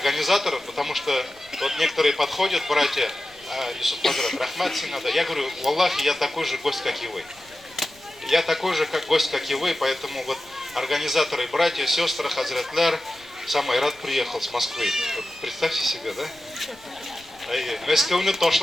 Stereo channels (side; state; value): left; noise; rumble, 29 dB below the sound